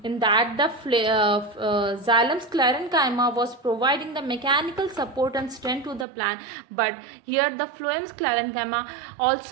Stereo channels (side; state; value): left; drops out; at 6.1 s